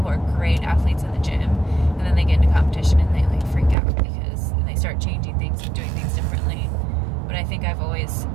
are great athletes in the gym, and then they get into competition and they like freak out and they start changing things and doing things differently. But I think I've always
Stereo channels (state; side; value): drops out; left; at 3.8 s